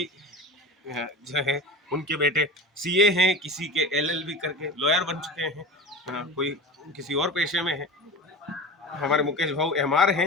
जो है उनके बेटे सीए हैं, किसी के एलएलबी करके लॉयर बन चुके हैं, कोई किसी और पेशे में है। हमारे मुकेश भाऊ एमआर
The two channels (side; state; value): both; normal; correlation 0.32